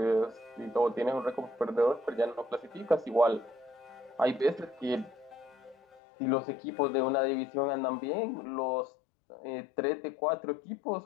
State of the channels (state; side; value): drops out; right; at 6.0 s